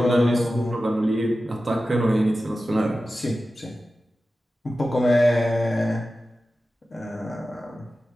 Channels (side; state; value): both; normal; correlation 0.94